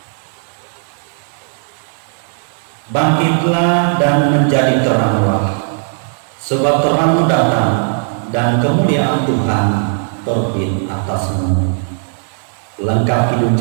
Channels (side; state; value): left; silent; 69 dB below the other